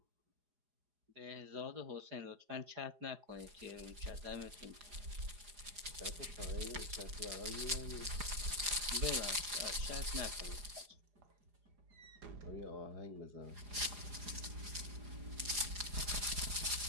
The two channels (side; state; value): left; late; 4.8 ms